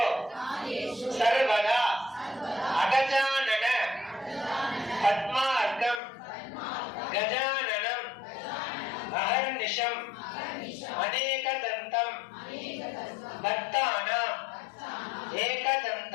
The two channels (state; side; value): drops out; right; at 6.0 s